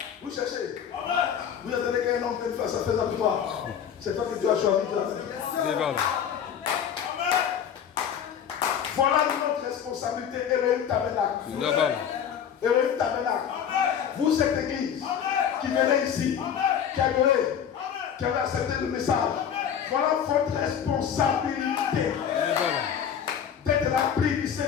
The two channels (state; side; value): quieter; right; 8.4 dB